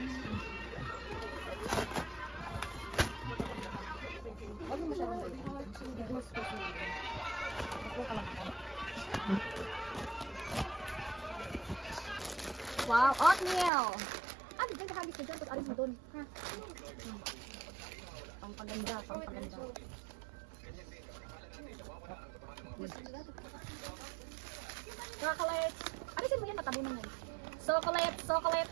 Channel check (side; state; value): left; drops out; at 13.7 s